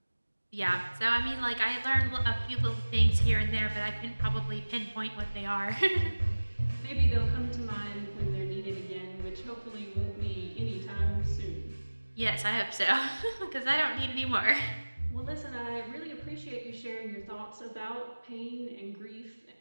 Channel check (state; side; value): inverted; both; correlation -1.00